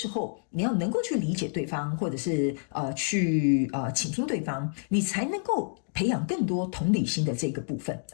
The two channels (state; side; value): silent; right; digital silence